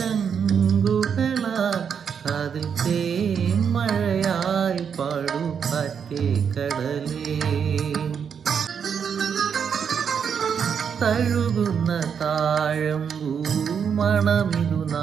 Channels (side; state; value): left; quieter; 7.2 dB